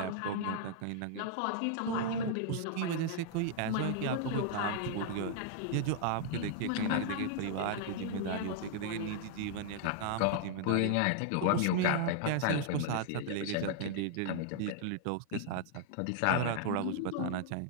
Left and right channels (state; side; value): different; both; correlation -0.01